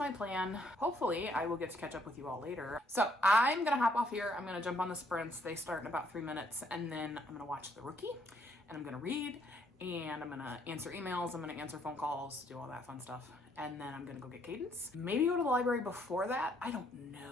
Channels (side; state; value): both; normal; correlation 0.68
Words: plan. Hopefully, I will get to catch up with you all later. So I'm gonna hop off here. I'm gonna jump on the sprints. They start in about 3 minutes, and then I'm gonna watch The Rookie, and I'm gonna read, and I'm gonna answer emails, I'm gonna answer phone calls, do all that fun stuff, and then I'm gonna go get Cadence. Maybe go to the library before that. I don't